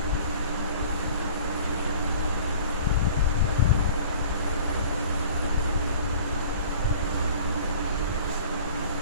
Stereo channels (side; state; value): both; inverted; correlation -0.46